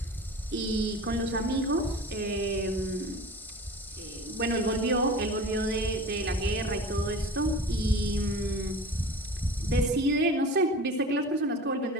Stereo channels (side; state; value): both; normal; correlation 0.37